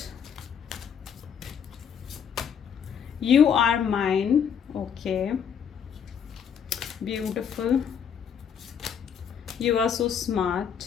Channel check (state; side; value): quieter; right; 7.7 dB